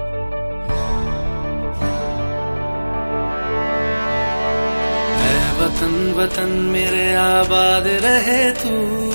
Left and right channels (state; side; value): inverted; both; correlation -1.00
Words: वतन वतन मेरे आबाद रहे तू,